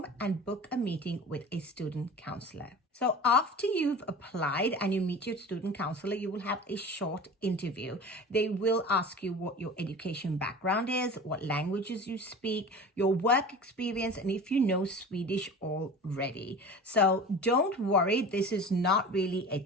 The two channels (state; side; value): normal; both; correlation 0.37